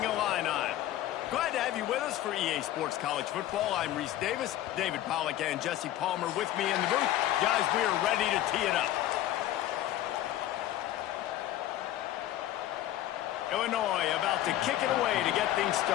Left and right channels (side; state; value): right; quieter; 13.5 dB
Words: Illini. Glad to have you with us for EA Sports College Football. I'm Reese Davis, David Pollack and Jesse Palmer with me in the booth. Guys, we are ready to tee it up. Illinois about to kick it away to get things